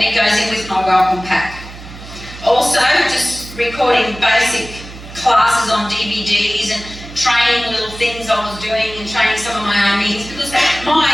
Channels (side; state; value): right; noise; hum, 15 dB below the sound